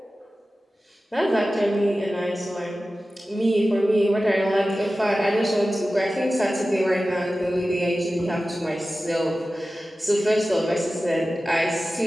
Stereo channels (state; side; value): normal; both; correlation 0.95